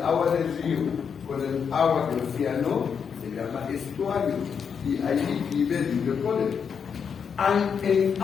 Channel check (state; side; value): quieter; right; 6.8 dB